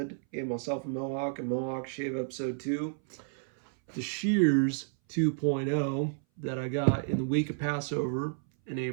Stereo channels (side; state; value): left; silent; 57 dB below the other